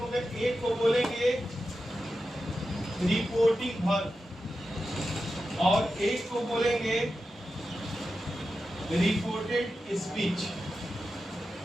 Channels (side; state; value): both; normal; correlation 0.91